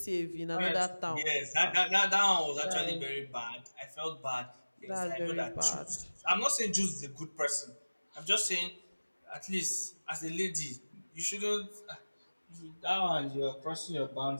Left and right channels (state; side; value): inverted; both; correlation -1.00